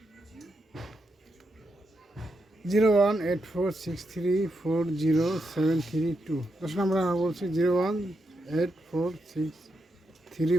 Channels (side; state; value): both; normal; correlation 0.84